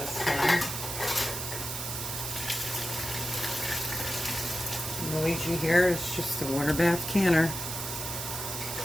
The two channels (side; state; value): right; noise; hiss, 5 dB below the sound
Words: time. Luigi here is just a water bath canner.